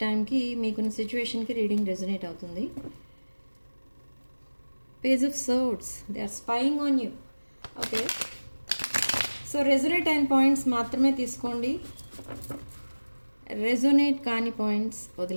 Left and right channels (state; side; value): inverted; both; correlation -1.00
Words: టైంకి మీకున్న సిచ్యువేషన్కి రీడింగ్ రెజొనేట్ అవుతుంది. Page of swords, they are spying on you. Okay, so resonate అయిన పాయింట్స్ మాత్రమే తీసుకోండి, రెజొనేట్ కాని పాయింట్స్